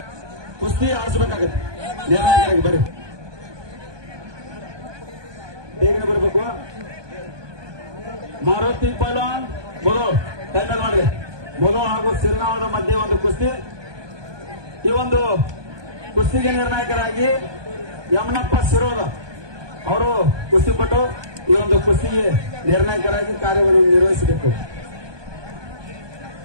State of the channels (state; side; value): late; left; 1.2 ms